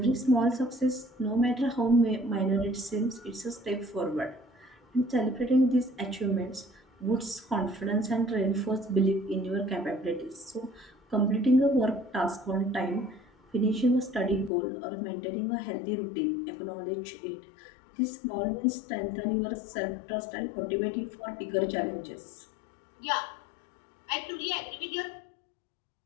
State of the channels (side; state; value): right; drops out; at 14.5 s